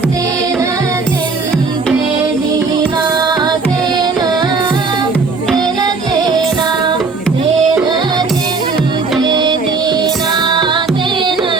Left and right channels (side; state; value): left; quieter; 4.3 dB